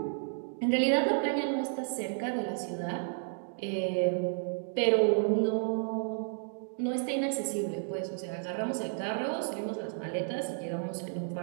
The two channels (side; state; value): left; silent; digital silence